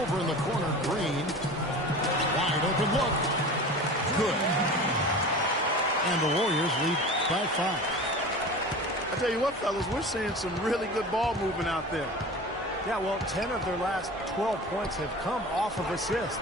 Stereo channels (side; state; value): both; normal; correlation 0.35